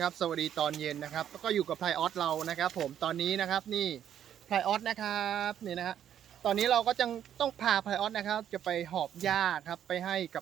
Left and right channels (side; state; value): left; quieter; 9.9 dB